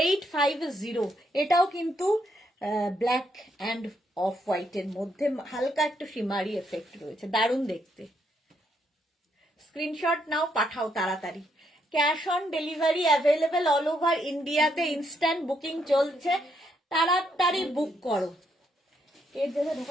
এটাও কিন্তু ব্ল্যাক অ্যান্ড অফ হোয়াইট এর মধ্যে হালকা একটু শিমারি এফেক্ট রয়েছে দারুণ দেখতে স্ক্রিনশট নাও পাঠাও তাড়াতাড়ি cash on delivery available all over ইন্ডিয়াতে ইনস্ট্যান্ট বুকিং চলছে তাড়াতাড়ি বুক করো এর জায়গায়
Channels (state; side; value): normal; both; correlation 0.75